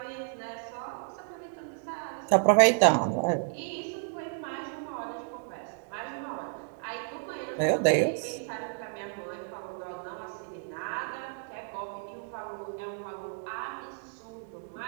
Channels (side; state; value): left; silent; digital silence